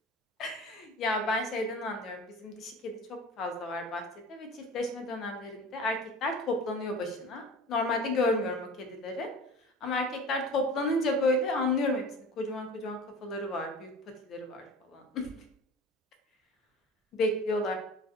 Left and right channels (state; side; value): normal; both; correlation 0.38